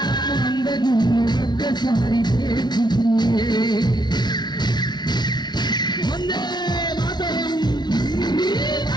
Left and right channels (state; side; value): late; right; 0.20 ms